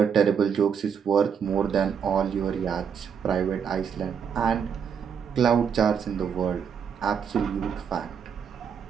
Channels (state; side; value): quieter; left; 7.2 dB